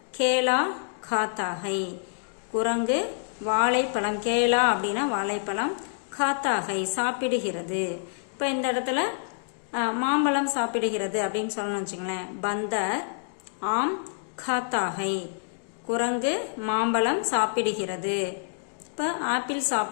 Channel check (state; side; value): silent; right; digital silence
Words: கேலா காத்தா ஹை, குரங்கு வாழைப்பழம். கேலா அப்படின்னா வாழைப்பழம், காத்தா ஹை சாப்பிடுகிறது. இப்போ இந்த இடத்துல மாம்பழம் சாப்பிடுகிறது அப்படின்னு சொல்லணும்னு வச்சுங்களேன். பந்தர் ஆம் காத்தா ஹை, குரங்கு மாம்பழம் சாப்பிடுகிறது. இப்போ ஆப்பிள்